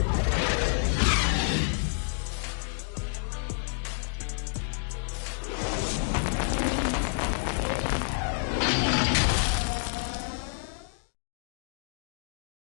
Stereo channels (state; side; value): silent; right; digital silence